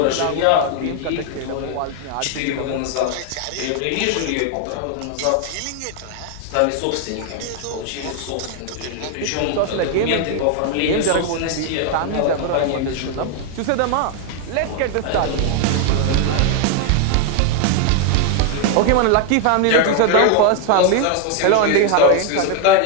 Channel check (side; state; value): both; different; correlation 0.00